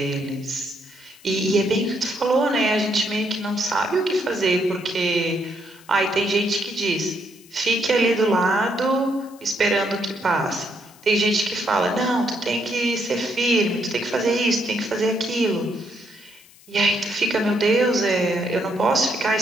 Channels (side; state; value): left; noise; hiss, 25 dB below the sound